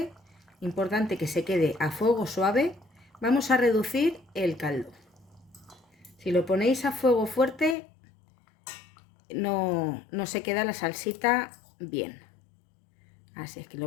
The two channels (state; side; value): drops out; right; at 7.8 s